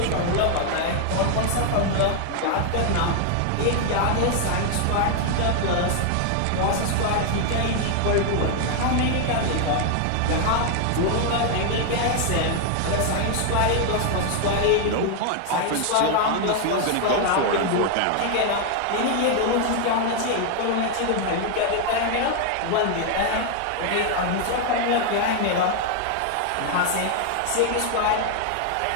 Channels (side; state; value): both; different; correlation 0.00